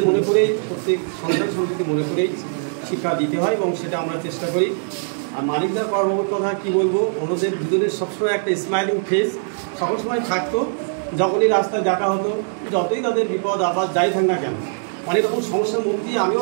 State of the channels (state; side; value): silent; left; digital silence